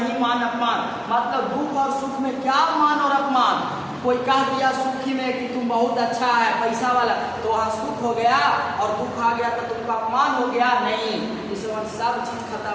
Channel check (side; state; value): both; identical; correlation 1.00